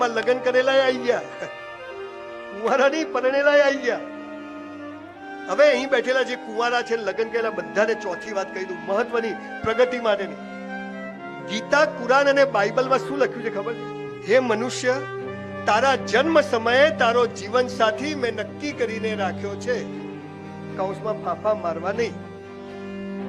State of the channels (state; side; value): identical; both; correlation 1.00